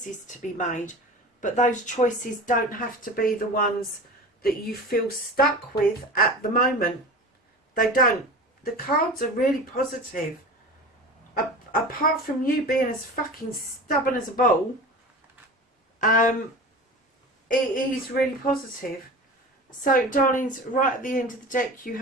to be made, but those choices don't have to be the ones that you feel stuck with at the moment. They don't. The cards are really positive. Apart from you being as fucking stubborn as a bull, it is really positive. So, darlings, right at the end of the deck you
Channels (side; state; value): both; normal; correlation 0.34